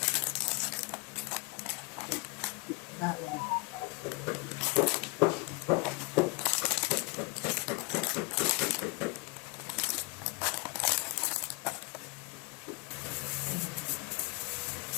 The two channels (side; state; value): right; quieter; 28.4 dB